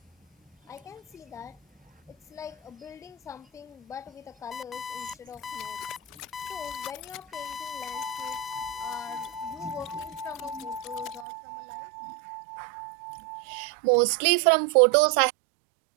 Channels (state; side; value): drops out; left; at 11.2 s